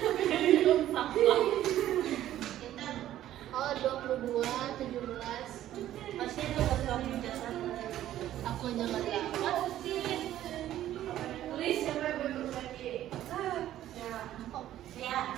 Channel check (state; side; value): quieter; left; 12.8 dB